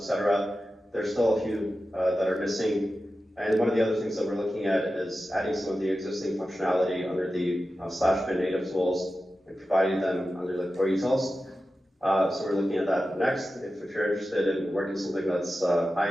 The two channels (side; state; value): both; normal; correlation 0.93